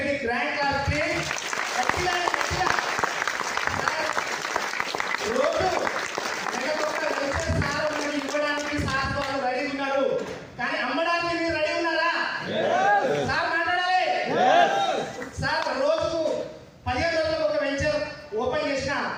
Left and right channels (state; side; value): identical; both; correlation 1.00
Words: గ్రాండ్ క్లాస్ ఇవ్వడానికి సార్ వాళ్ళు రెడీ ఉన్నారు. కానీ అమ్మడానికి మీరు రెడీ ఉన్నారా? సార్ మాట్లాడాలి. సార్ రోజుకు 15 రోజులకు ఒక వెంచర్ ఓపెన్ చేసిన